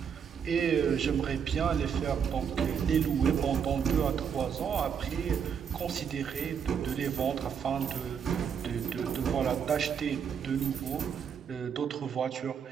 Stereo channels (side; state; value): left; quieter; 7.4 dB